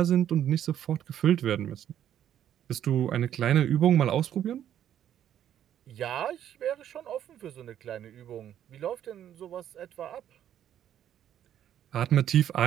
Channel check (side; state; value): left; quieter; 10.5 dB